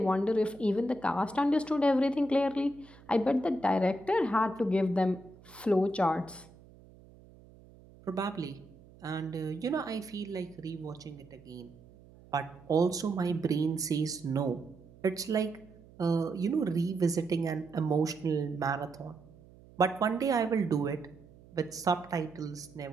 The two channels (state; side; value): noise; right; hum, 23 dB below the sound